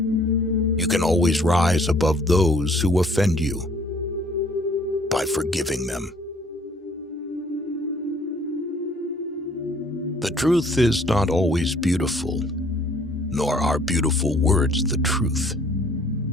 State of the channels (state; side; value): normal; both; correlation 0.59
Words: You can always rise above those who offend you by forgiving them. The truth is not always beautiful, nor are beautiful words the truth.